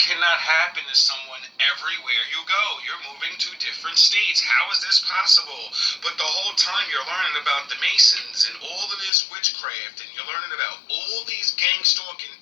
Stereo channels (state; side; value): drops out; right; at 9.1 s